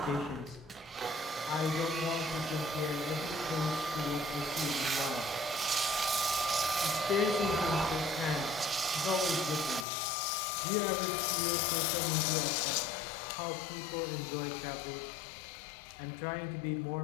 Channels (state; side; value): drops out; right; at 9.9 s